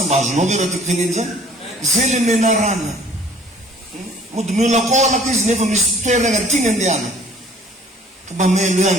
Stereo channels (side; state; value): both; normal; correlation 0.54